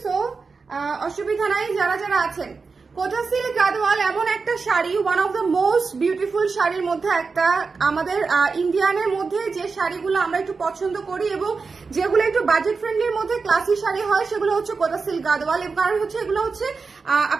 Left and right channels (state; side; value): quieter; left; 4.7 dB